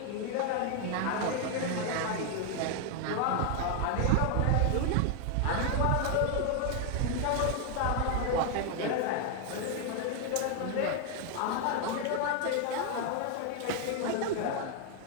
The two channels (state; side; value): different; both; correlation 0.00